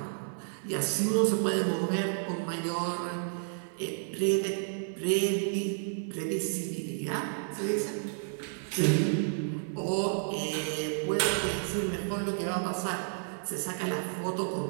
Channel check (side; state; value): left; silent; 57 dB below the other